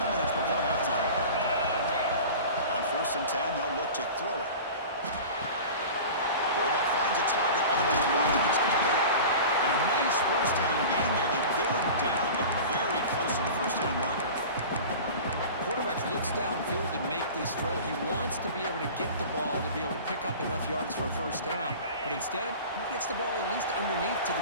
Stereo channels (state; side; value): inverted; both; correlation -0.36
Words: before halftime. first and 10, they'll look to throw it. Quarterback finds a target on the right. It's complete. And a nice first down gain there. They get him down, but very close to the first down marker. Quarterback looks downfield to make this throw. He wants to be able to get the ball to be able to pick up enough yards for a first down. But instead, he gets the ball at least underneath to